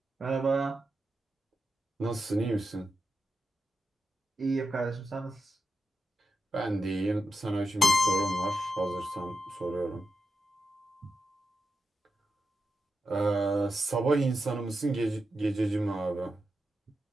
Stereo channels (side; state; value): both; normal; correlation 0.89